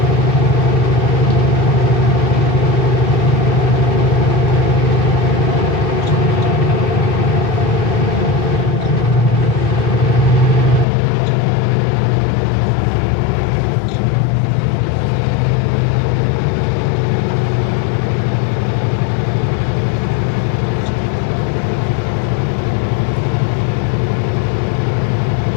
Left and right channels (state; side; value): drops out; right; at 10.9 s